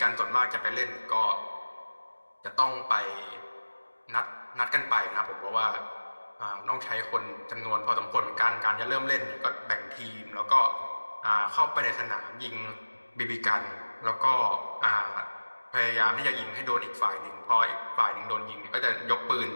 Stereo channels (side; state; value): both; inverted; correlation -1.00